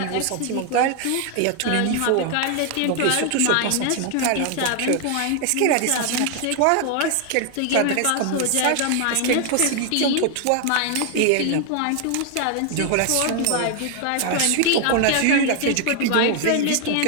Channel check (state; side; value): different; both; correlation 0.00